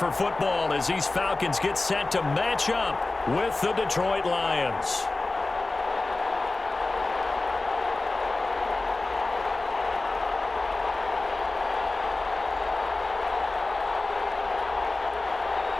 football as these Falcons get set to match up with the Detroit Lions.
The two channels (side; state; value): right; quieter; 3.2 dB